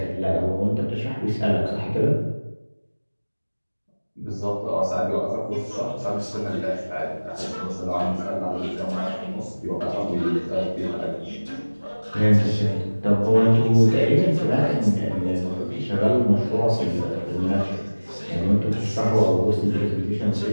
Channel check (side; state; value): both; inverted; correlation -1.00